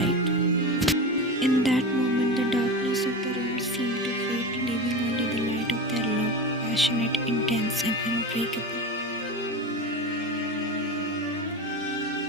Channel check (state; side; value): normal; both; correlation 0.25